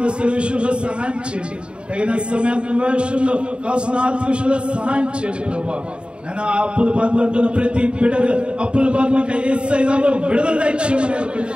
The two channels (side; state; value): left; late; 0.054 ms